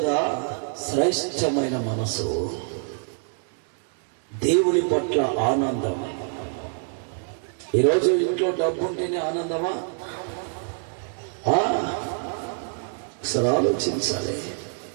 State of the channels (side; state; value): left; silent; 61 dB below the other